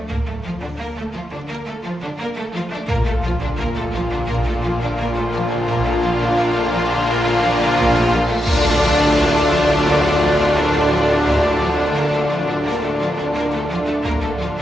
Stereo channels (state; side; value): normal; both; correlation 0.85